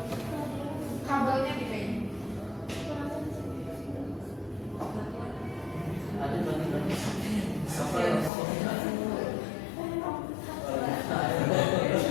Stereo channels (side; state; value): right; drops out; at 8.3 s